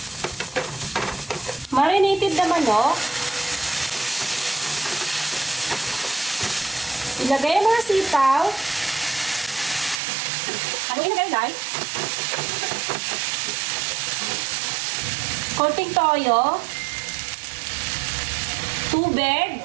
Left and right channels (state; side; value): drops out; left; at 10.0 s